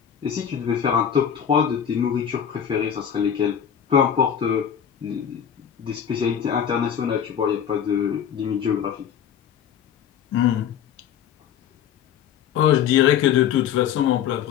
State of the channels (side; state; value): right; quieter; 8.8 dB